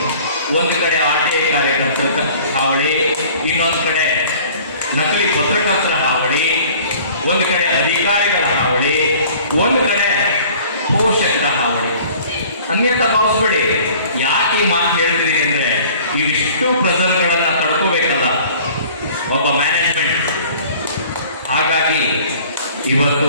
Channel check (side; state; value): both; inverted; correlation -0.49